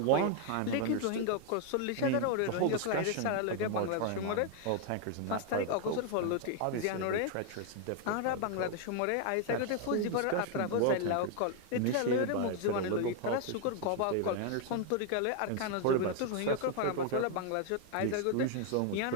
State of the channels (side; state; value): both; different; correlation 0.00